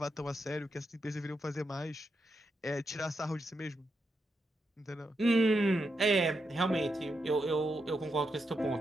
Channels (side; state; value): both; normal; correlation 0.84